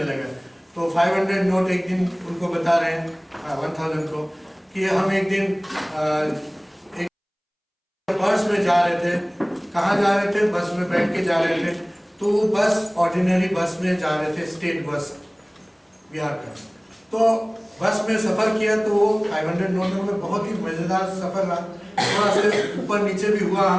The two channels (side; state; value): both; identical; correlation 1.00